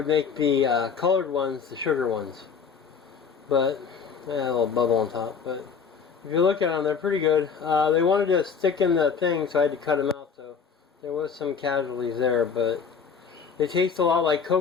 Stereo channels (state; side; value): quieter; right; 6.1 dB